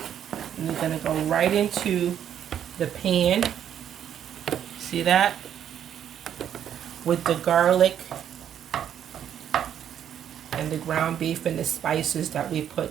And you're going to go right into the pan. See that? With the garlic and the ground beef and the spices that we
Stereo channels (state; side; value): quieter; left; 9.6 dB